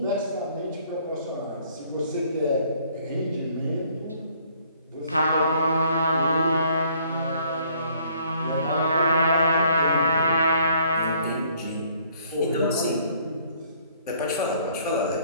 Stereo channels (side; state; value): both; inverted; correlation -0.62